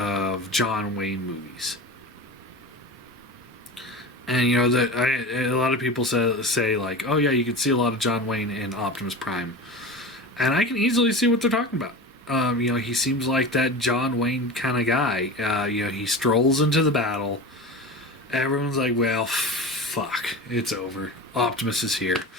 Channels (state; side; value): normal; both; correlation 0.30